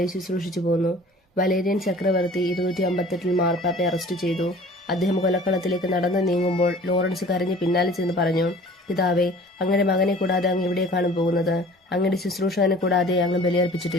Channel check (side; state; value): both; normal; correlation 0.47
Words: ശുശ്രൂഷിച്ചു പോന്നു. വലേരിയൻ ചക്രവർത്തി 258 മാർപ്പാപ്പയെ അറസ്റ്റ് ചെയ്തു. അദ്ദേഹം കൊലക്കളത്തിലേക്ക് നടന്നു നീങ്ങുമ്പോൾ ലോറൻസ് കരഞ്ഞ് പിന്നാലെ ചെന്ന് പറഞ്ഞു, പിതാവേ, അങ്ങയുടെ മകനെ കൂടാതെ അങ്ങ് എവിടേക്കാണ് പോകുന്നത്? അങ്ങയുടെ ശുശ്രൂഷകനെ കൂടാതെ അങ്ങ്